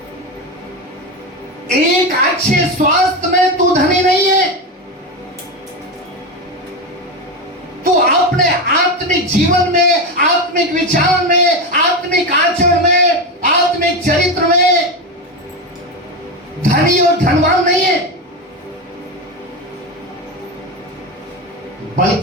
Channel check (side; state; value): both; normal; correlation 0.16